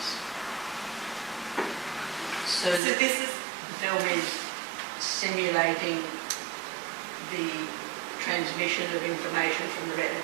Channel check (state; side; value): drops out; left; at 2.8 s